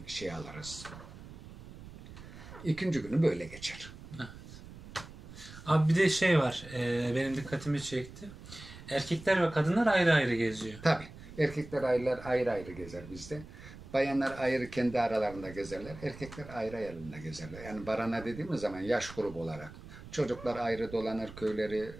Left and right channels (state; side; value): noise; right; rumble, 15 dB below the sound